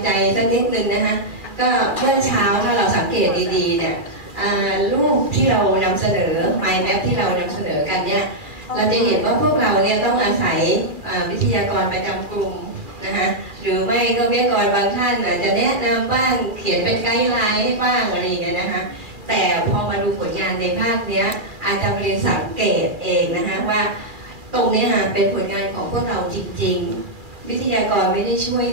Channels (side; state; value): left; late; 2.4 ms